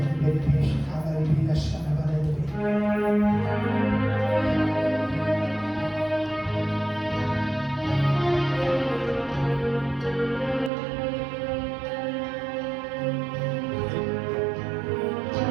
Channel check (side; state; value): left; drops out; at 10.7 s